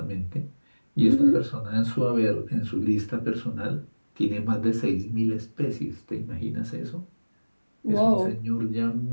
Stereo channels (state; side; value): inverted; both; correlation -1.00